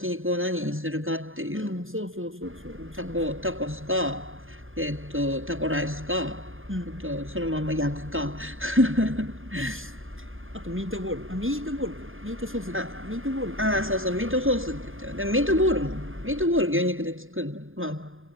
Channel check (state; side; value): late; left; 0.59 ms